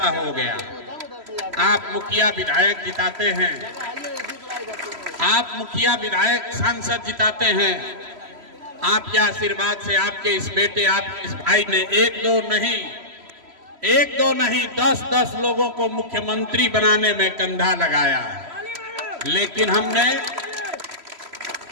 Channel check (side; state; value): left; late; 3.0 ms